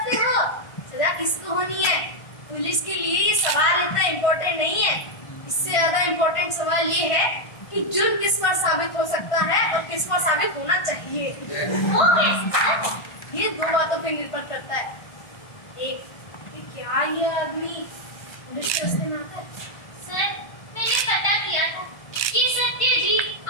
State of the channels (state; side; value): late; right; 1.6 ms